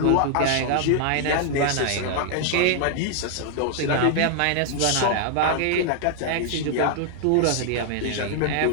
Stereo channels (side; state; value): both; different; correlation 0.00